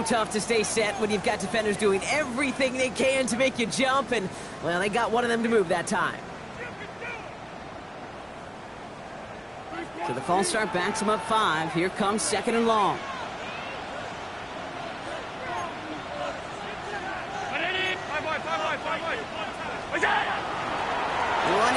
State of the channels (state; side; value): identical; both; correlation 1.00